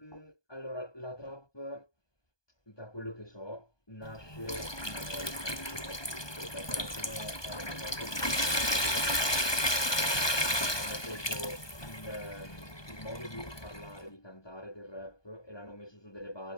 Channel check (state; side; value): late; right; 1.2 ms